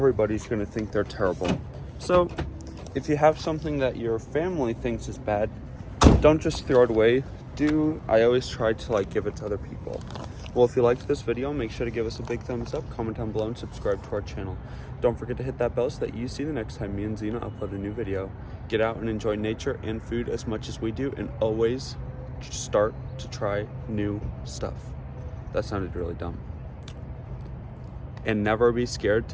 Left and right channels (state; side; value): identical; both; correlation 1.00